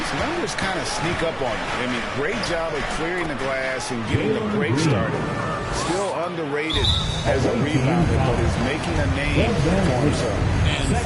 numbers kind of sneak up on you. I mean, great job of clearing the glass and getting the break started. Still underrated as a rebounder, but is making a name for himself. And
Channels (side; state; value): both; identical; correlation 1.00